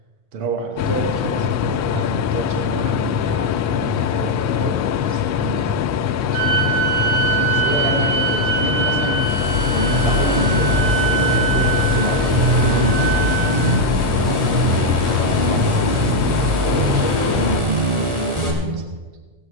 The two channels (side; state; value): left; late; 1.4 ms